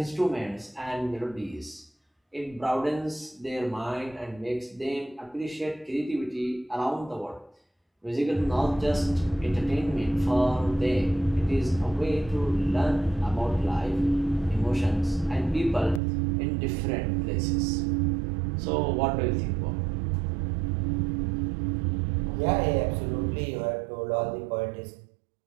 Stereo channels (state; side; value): drops out; left; at 16.0 s